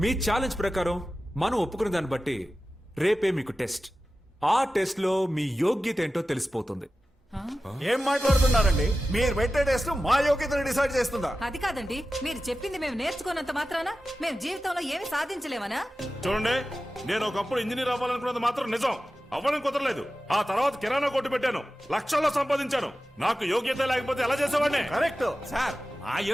మీ ఛాలెంజ్ ప్రకారం మనం ఒప్పుకున్న దాన్ని బట్టి రేపే మీకు టెస్ట్. ఆ టెస్ట్ లో మీ యోగ్యత ఏంటో తెలిసిపోతుంది. ఏం మాట్లాడుతున్నారండి? మీరు పెట్టే టెస్ట్ మా యోగ్యతను డిసైడ్ చేస్తుందా? అది కాదండి, మీరు చెప్పింది మేము నేర్చుకున్నంత మాత్రాన మేము జీవితంలో ఏమి సాధించలేమనా? చూడండి, నేను ఒకప్పుడు ఇంజనీర్ అవ్వాలనుకున్నది మాత్రం నిజం, అవ్వడం కుదరలేదు. ఆ తర్వాత కిరాణా కొట్టు పెట్టాను, లక్షల్లో సంపాదించాను. నాకు యోగ్యత లేకపోతే ఎలా చేసేవాడిని? కరెక్ట్ సార్, మా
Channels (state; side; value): normal; both; correlation 0.94